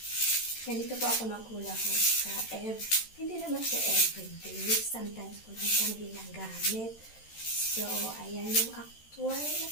Ganito po ako maghula hoop sa hindi naman siya everyday. Sometimes ko lang siyang ginagamit. So, ayan yung actual na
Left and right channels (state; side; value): late; right; 13 ms